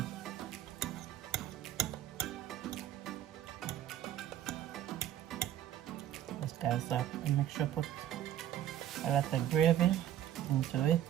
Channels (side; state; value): left; quieter; 11.5 dB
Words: Yes, guys, so I make sure I put a lot of gravy into it.